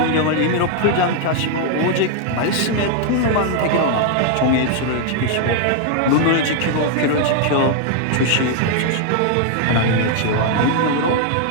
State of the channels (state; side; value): different; both; correlation 0.00